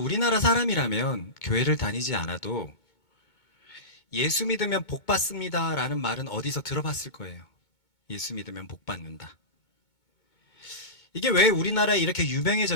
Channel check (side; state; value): right; late; 2.2 ms